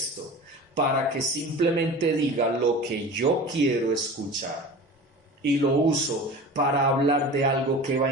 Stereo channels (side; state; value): both; normal; correlation 0.36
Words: para que simplemente diga lo que yo quiero escuchar y lo uso para hablar de algo que va